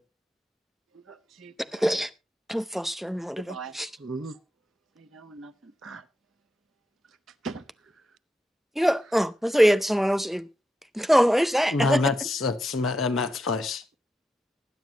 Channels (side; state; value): both; normal; correlation 0.87